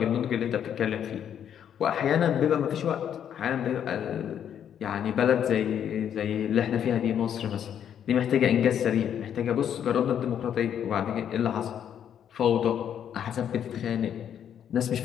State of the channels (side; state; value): right; quieter; 9.2 dB